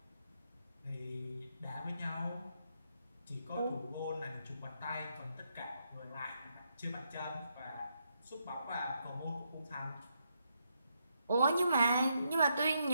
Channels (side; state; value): both; inverted; correlation -0.79